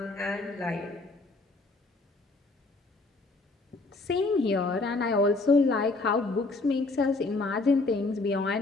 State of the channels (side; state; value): right; quieter; 3.4 dB